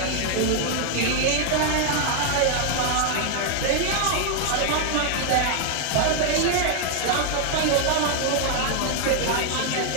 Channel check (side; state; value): both; different; correlation 0.00